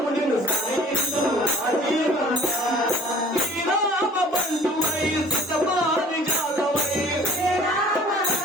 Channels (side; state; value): both; normal; correlation 0.50